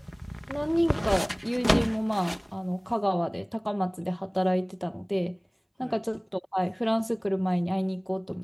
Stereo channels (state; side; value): identical; both; correlation 1.00